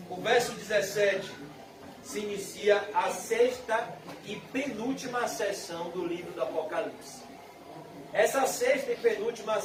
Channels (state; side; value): identical; both; correlation 1.00